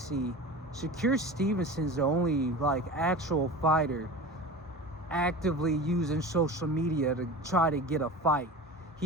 Shakur Stevenson's the only actual fighter actively using social media to try to get a fight.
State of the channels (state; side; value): normal; both; correlation 0.33